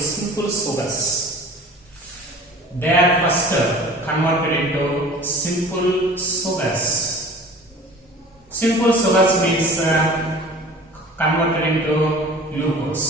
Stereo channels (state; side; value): normal; both; correlation 0.43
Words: sugars. They are first converted into simple sugars. Simple sugars means converted into